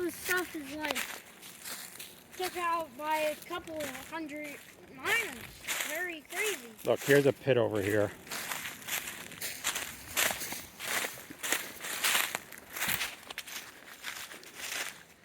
the stuff is like took out by a couple hundred miners. Very crazy. Look, here's a pit over here.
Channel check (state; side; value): identical; both; correlation 1.00